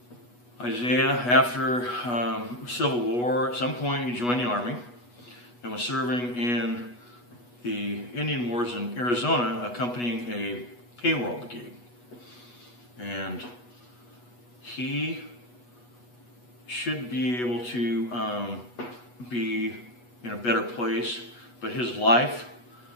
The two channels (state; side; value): late; right; 8.2 ms